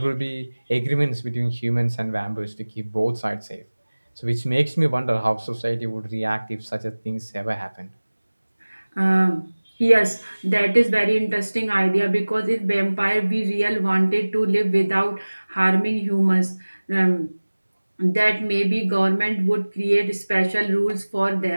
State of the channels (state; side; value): inverted; both; correlation -1.00